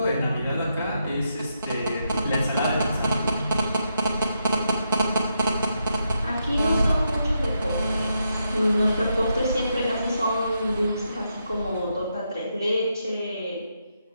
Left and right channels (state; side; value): inverted; both; correlation -0.82